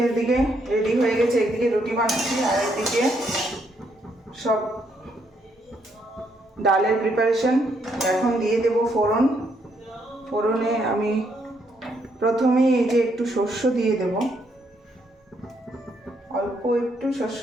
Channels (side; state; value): both; normal; correlation 0.74